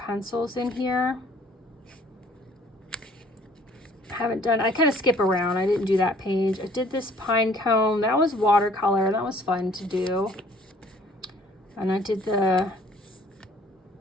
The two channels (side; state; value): both; normal; correlation 0.57